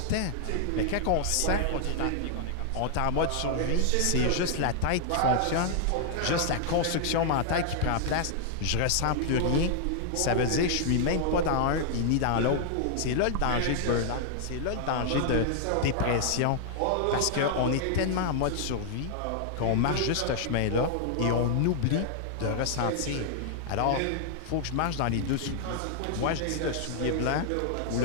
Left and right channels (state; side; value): different; both; correlation -0.01